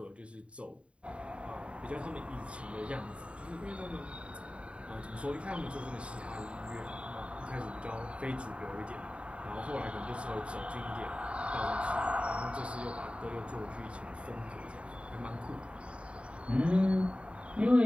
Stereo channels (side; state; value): left; late; 0.061 ms